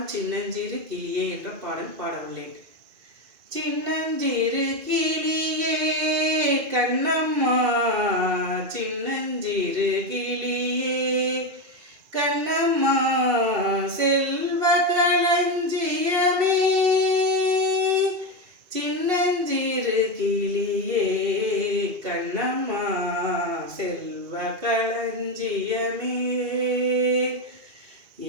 சின்னஞ்சிறு கிளியே என்ற பாடல் பாடவுள்ளேன். சின்னஞ்சிறு கிளியே கண்ணம்மா, சின்னஞ்சிறு கிளியே கண்ணம்மா, செல்வ களஞ்சியமே, சின்னஞ்சிறு கிளியே கண்ணம்மா, செல்வ களஞ்சியமே,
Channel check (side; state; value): left; late; 2.7 ms